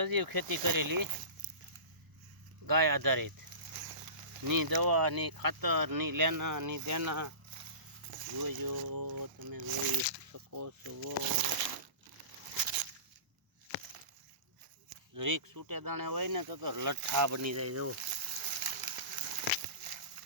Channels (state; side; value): late; left; 1.0 ms